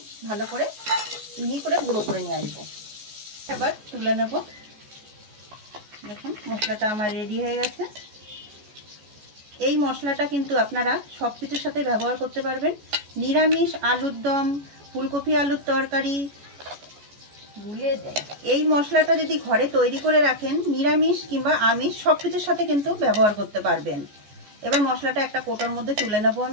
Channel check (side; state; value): left; late; 14 ms